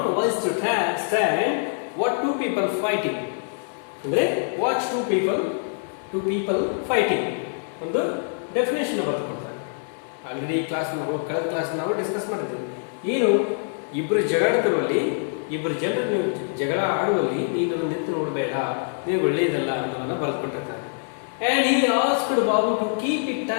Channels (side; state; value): right; silent; digital silence